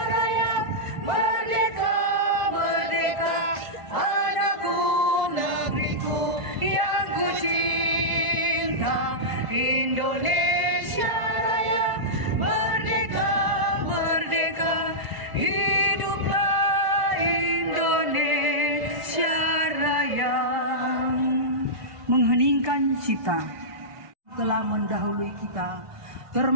Raya, merdeka, merdeka, Cipta telah mendahului kita,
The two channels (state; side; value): late; left; 1.5 ms